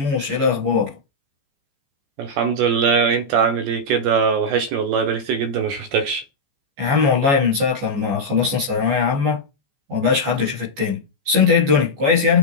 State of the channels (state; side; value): late; left; 14 ms